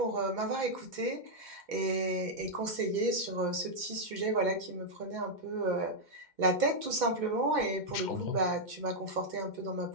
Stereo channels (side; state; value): left; late; 2.1 ms